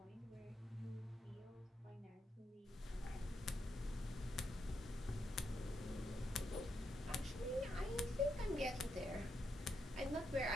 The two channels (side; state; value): both; normal; correlation 0.82